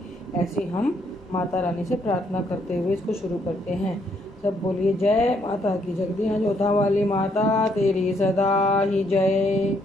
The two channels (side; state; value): both; normal; correlation 0.71